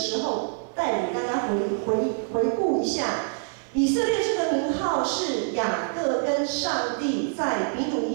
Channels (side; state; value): left; silent; 58 dB below the other